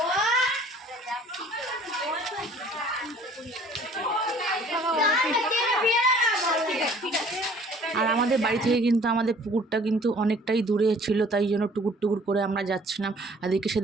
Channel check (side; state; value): both; normal; correlation 0.54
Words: আর আমাদের বাড়ি থেকে কিন্তু আমাদের পুকুরটা কিন্তু অনেকটাই দূরে ছিল, তাই জন্য টুকুর টুকুর করে আমরা যাচ্ছিলাম। আর এদিকে